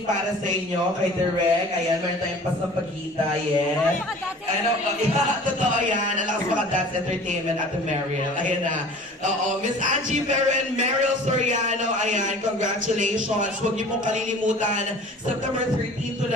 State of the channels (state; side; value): normal; both; correlation 0.45